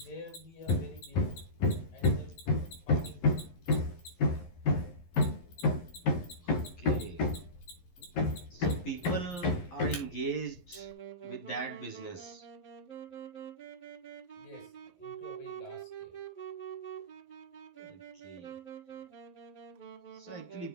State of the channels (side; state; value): right; late; 11 ms